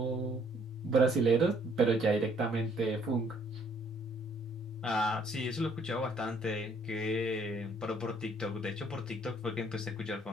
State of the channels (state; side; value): normal; both; correlation 0.64